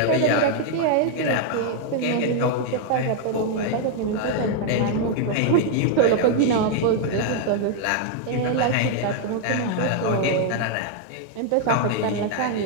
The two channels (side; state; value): both; different; correlation 0.00